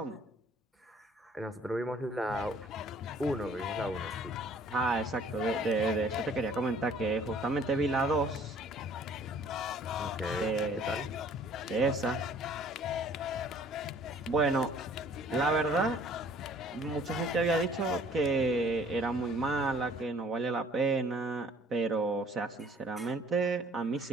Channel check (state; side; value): normal; both; correlation 0.55